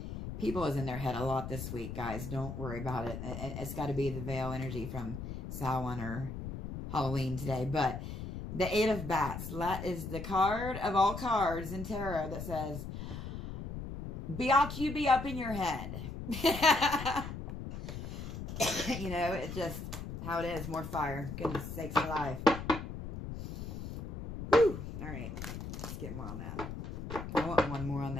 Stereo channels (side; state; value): left; noise; rumble, 7 dB below the sound